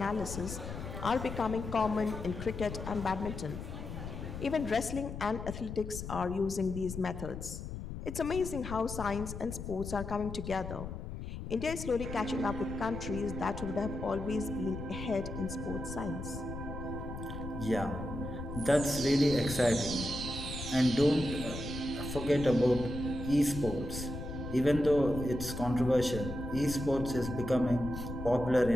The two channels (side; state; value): left; noise; rumble, 8 dB below the sound